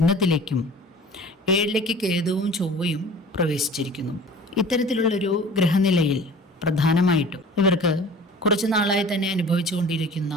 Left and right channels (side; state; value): both; normal; correlation 0.44